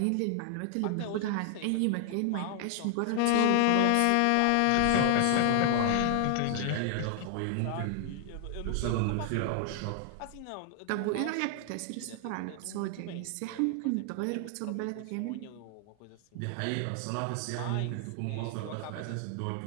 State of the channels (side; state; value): both; different; correlation 0.00